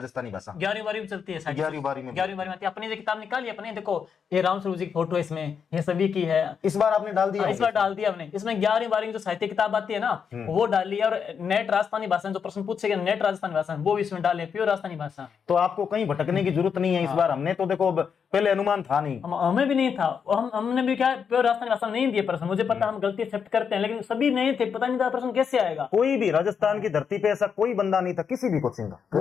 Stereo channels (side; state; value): right; quieter; 6.8 dB